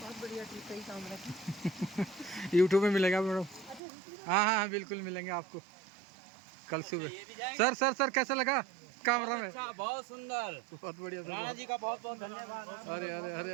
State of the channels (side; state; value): left; drops out; at 3.8 s